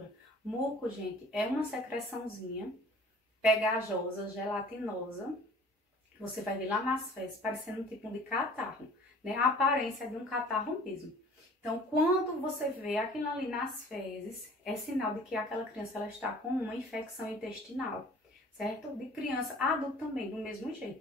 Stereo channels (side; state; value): both; normal; correlation 0.49